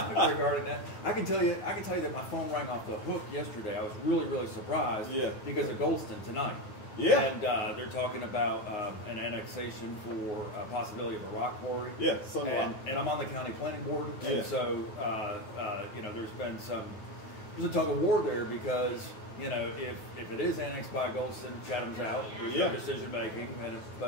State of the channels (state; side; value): late; right; 12 ms